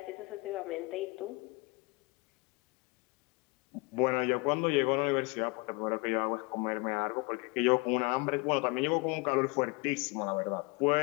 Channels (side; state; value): right; quieter; 27.8 dB